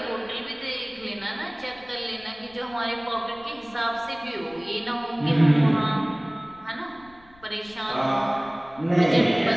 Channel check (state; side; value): noise; left; rumble, 27 dB below the sound